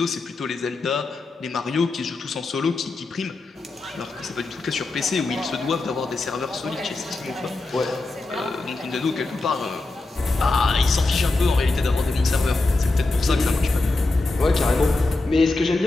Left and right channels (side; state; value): right; quieter; 3.2 dB